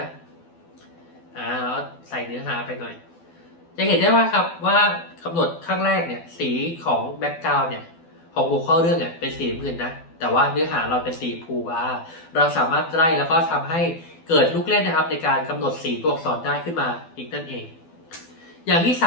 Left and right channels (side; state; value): right; late; 12 ms